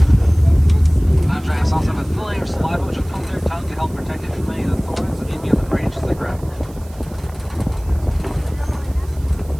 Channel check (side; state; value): right; noise; hiss, 25 dB below the sound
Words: Giraffes also have a thin layer of saliva, which will coat their tongue to help protect it from any of the thorns that may be on the branches they grab.